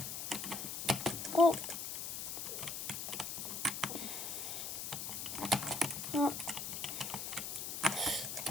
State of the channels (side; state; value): left; noise; hiss, 4 dB below the sound